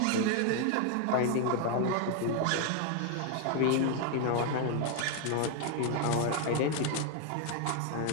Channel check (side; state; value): both; different; correlation 0.01